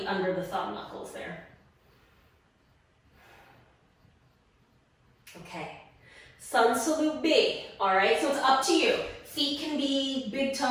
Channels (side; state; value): both; identical; correlation 1.00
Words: under the thumb knuckles there. Okay, Sun Salute B. All right, so it's up to you. Feet can be big